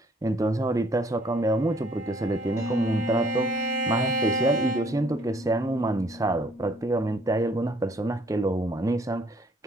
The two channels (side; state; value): both; normal; correlation 0.62